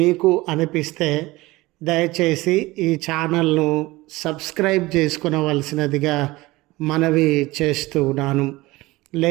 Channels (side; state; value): left; quieter; 20.1 dB